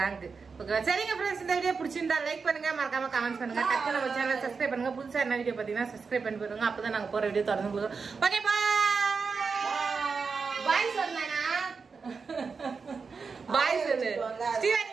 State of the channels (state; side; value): quieter; left; 5.1 dB